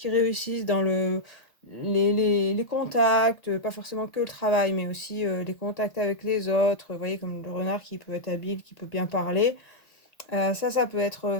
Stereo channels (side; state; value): right; late; 1.8 ms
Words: réussissent dans les contacts, pas forcément que le travail, mais aussi les contacts avec les autres. Vous voyez, comme le renard qui peut être habile, qui peut bien parler. Ça peut